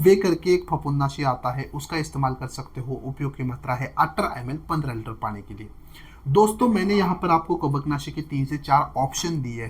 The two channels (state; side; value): identical; both; correlation 1.00